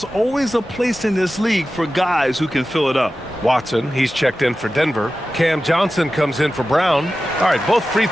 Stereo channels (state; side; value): normal; both; correlation 0.94